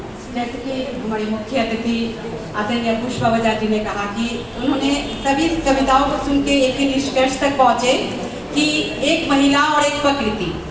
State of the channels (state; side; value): identical; both; correlation 1.00